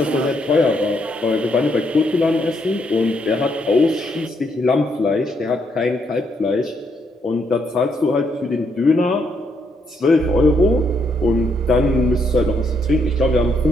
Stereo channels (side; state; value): both; normal; correlation 0.75